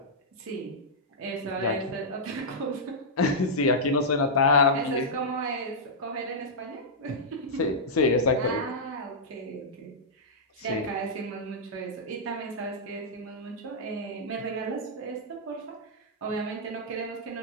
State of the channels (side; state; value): both; normal; correlation -0.09